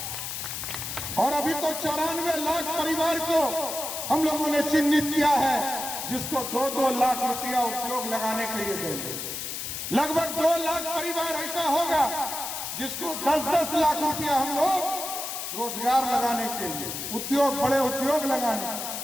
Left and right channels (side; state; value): left; noise; hiss, 5 dB below the sound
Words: और अभी तो 94 लाख परिवार को हम लोगों ने चिन्हित किया है, जिसको 2-2 लाख रुपया उद्योग लगाने के लिए देंगे। लगभग 2 लाख परिवार ऐसा होगा जिसको 10-10 लाख रुपया हम लोग रोजगार लगाने के लिए, उद्योग, बड़े उद्योग लगाने।